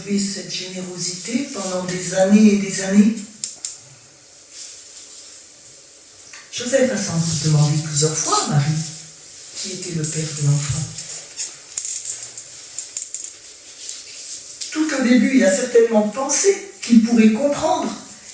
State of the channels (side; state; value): both; identical; correlation 1.00